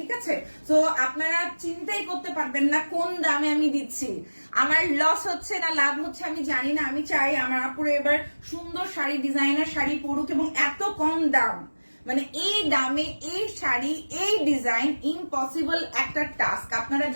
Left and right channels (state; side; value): inverted; both; correlation -1.00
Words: আছে। তো আপনারা চিন্তাই করতে পারবেন না কোন দামে আমি দিচ্ছি। আমার লস হচ্ছে না লাভ হচ্ছে আমি জানি না। আমি চাই আমার আপুরে এবার সুন্দর শাড়ি, ডিজাইনার শাড়ি পরুক, এবং এত কম দাম, মানে এই দামে এই শাড়ি, এই ডিজাইন, ইম্পসিবল একটা টাস্ক। আপনারা